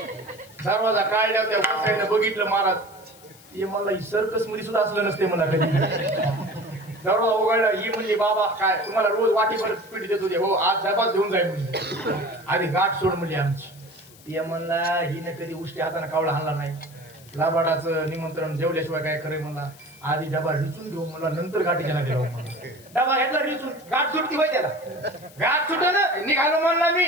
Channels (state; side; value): noise; left; hiss, 23 dB below the sound